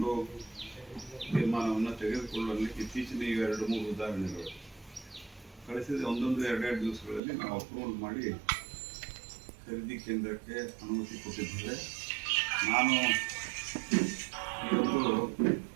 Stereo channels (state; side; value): drops out; left; at 7.2 s